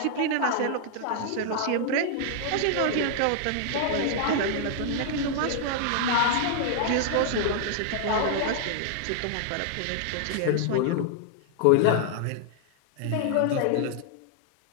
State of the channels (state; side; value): different; both; correlation -0.01